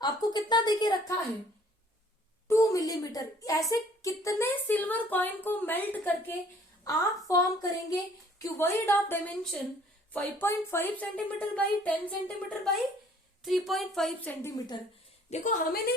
आपको कितना देके रखा है, 2 मिलीमीटर। ऐसे कितने सिल्वर कॉइन को मेल्ट करके आप फॉर्म करेंगे cuboid of dimension 5.5 centimetre by 10 centimetre by 3.5 centimetre. देखो हमें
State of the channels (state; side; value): normal; both; correlation 0.57